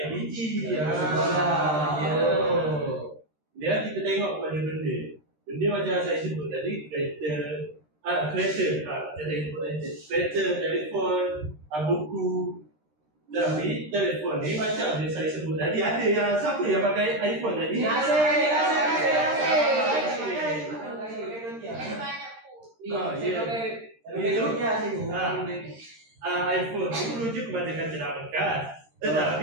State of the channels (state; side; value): late; left; 13 ms